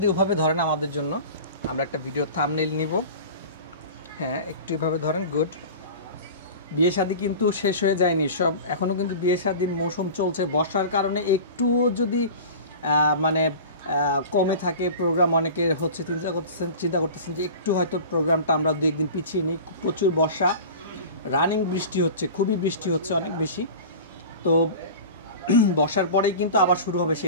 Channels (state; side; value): inverted; both; correlation -0.36